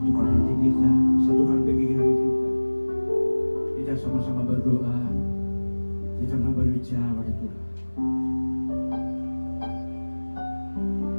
hati kita, satukan pikiran kita. Kita sama-sama berdoa, kita berbicara pada Tuhan.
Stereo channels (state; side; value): inverted; both; correlation -1.00